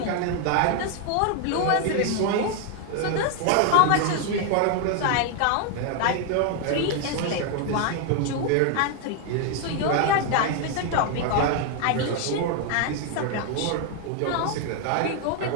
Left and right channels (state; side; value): different; both; correlation 0.00